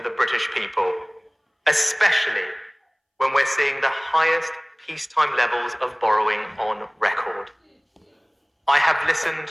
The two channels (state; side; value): identical; both; correlation 1.00